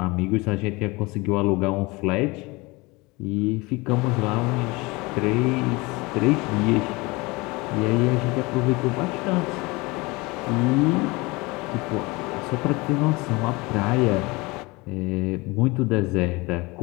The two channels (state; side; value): quieter; right; 24.2 dB